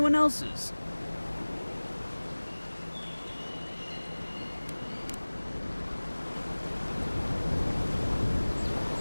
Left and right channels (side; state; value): both; inverted; correlation -1.00